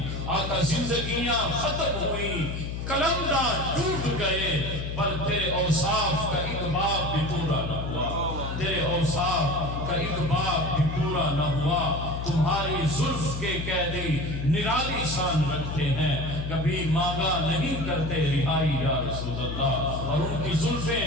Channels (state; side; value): noise; left; hum, 5 dB below the sound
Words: آقا زندگیاں ختم ہوئی کلمدہ ٹوٹ گئے پر تیرے اوصاف کا ایک باب بھی پورا نہ ہوا. تیرے اوصاف کا ایک باب بھی پورا نہ ہوا. تمہاری زلف کے قیدی نرالی شان رکھتے ہیں کبھی مانگا نہیں کرتے رہائی یا رسول اللہ. اور ان کی